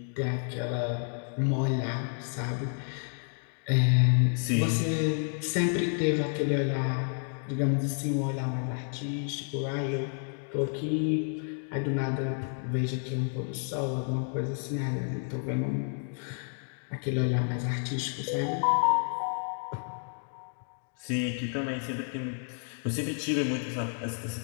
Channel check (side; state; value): right; silent; 58 dB below the other